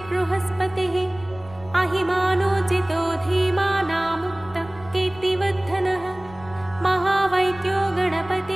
अहिमानोचितो धीमानामुक्तः कीर्तिवर्धनः महावैद्यो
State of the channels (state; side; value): noise; left; rumble, 20 dB below the sound